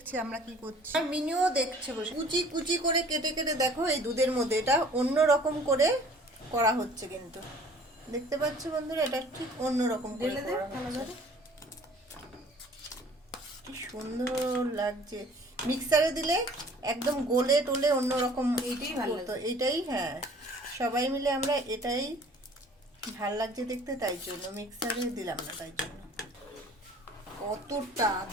আমরা কি করছি, আর মিনিও দেখছে বসে। কুচি কুচি করে কেটে কেটে দেখো এই দুধের মধ্যে এটা অন্য রকম করে করা হচ্ছে কিন্তু। দেখতে পাচ্ছ বন্ধুরা, এটা ঠিক অন্য রকম করে করা হচ্ছে। কি সুন্দর লাগছে। মিক্সারে দিলে একদম গোলে টোলে অন্যরকম। এইটাই ভালো তো এইটাই, হ্যাঁ, সবাই মিলে আমরা এটাই ভাল লাগছে দেখতে, তাই জন্য মিক্সারে দিলাম না। তাই জন্য কতটা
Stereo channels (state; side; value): normal; both; correlation 0.51